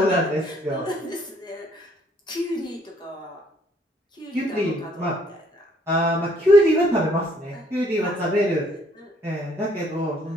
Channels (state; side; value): normal; both; correlation 0.64